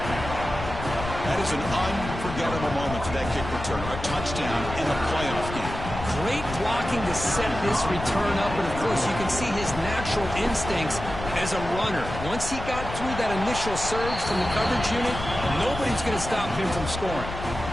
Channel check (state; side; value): noise; left; rumble, 8 dB below the sound